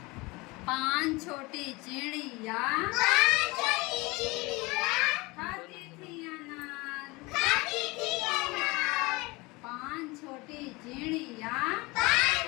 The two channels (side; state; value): right; quieter; 24.1 dB